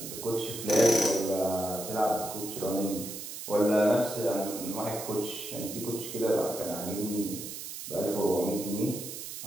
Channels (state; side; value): noise; right; hiss, 9 dB below the sound